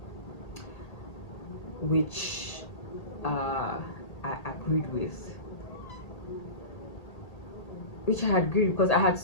which I agreed with, which I had agreed because I had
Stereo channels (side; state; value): right; late; 1.8 ms